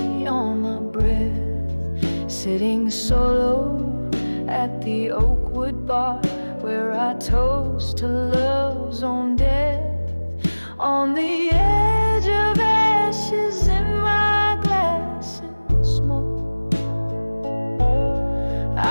on my breath, sitting solo at the Oakwood bar, where I toast to love's own death. On the edge of ashes in my glass and smoke,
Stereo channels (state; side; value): inverted; both; correlation -1.00